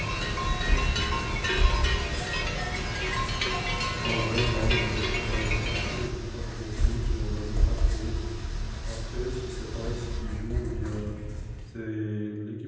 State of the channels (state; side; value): identical; both; correlation 1.00